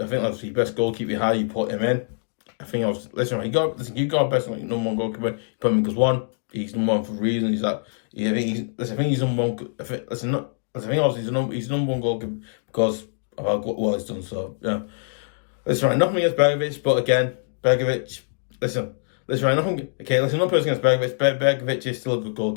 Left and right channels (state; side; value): silent; right; digital silence